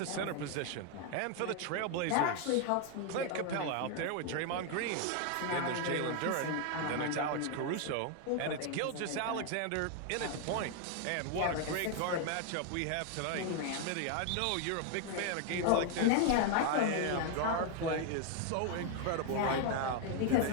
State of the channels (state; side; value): different; both; correlation 0.00